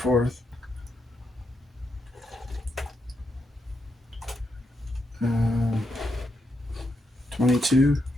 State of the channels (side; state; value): both; normal; correlation 0.82